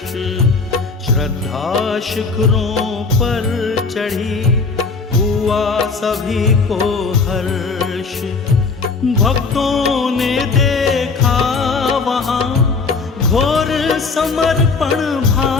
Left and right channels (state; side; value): quieter; right; 4.4 dB